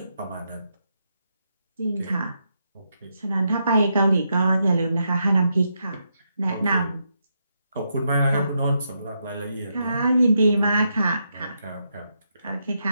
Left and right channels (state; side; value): inverted; both; correlation -0.82